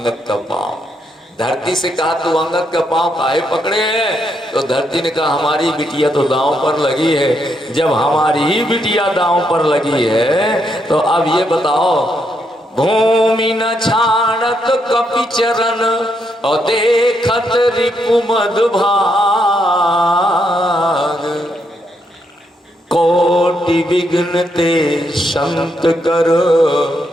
का पांव। धरती से कहा तू अंगद का पांव काहे पकड़े है? तो धरती ने कहा हमारी बिटिया तो दांव पर लगी है। जब हमारी ही बिटिया दांव पर लगी है तो अब ये बताओ, भूमि न छाड़त कपि चरण और देखत रिपु मधुभाग, कोटि विघ्न ते संत करो,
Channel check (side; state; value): both; normal; correlation 0.78